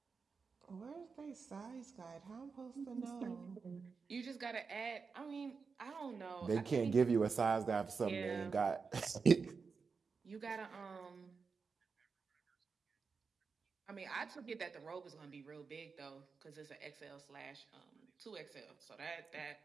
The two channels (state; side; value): quieter; left; 5.1 dB